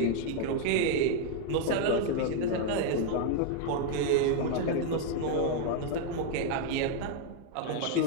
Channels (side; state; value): both; different; correlation 0.00